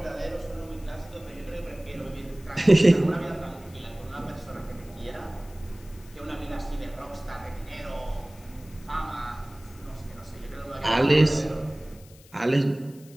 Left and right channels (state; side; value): noise; left; hiss, 24 dB below the sound